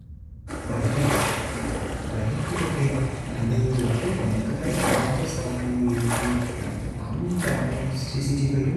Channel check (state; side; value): identical; both; correlation 1.00